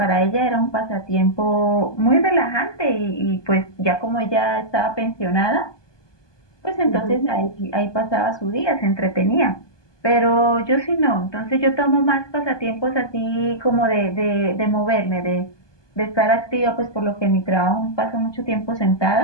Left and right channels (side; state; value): right; late; 1.2 ms